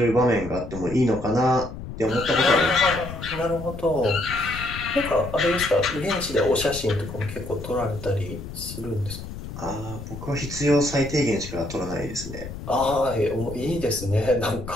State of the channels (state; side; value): noise; left; rumble, 10 dB below the sound